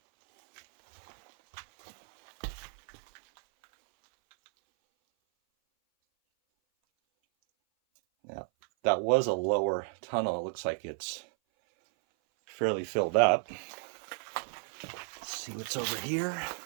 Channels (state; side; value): silent; left; 56 dB below the other